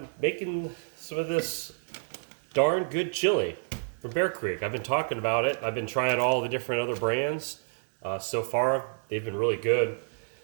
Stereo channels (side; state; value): left; silent; digital silence